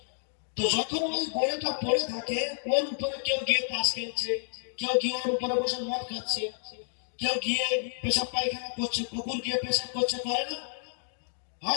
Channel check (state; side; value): silent; right; digital silence